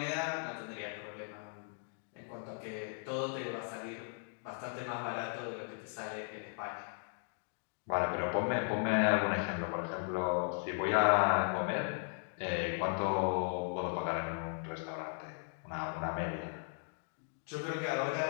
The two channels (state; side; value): silent; right; 53 dB below the other